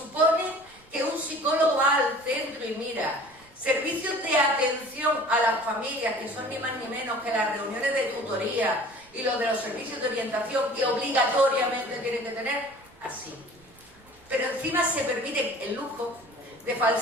que un psicólogo va al centro y mira, servicios de atención a las familias, que son ni más ni menos que las reuniones de tutoría y los de los servicios de orientación que obligatoriamente tienen que tener? Así. Pero encima se permite el lujo de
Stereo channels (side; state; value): right; noise; rumble, 28 dB below the sound